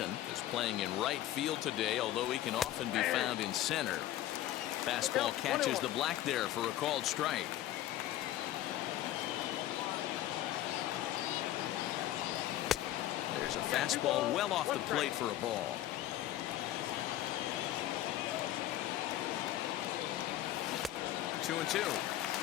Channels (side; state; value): right; quieter; 13.6 dB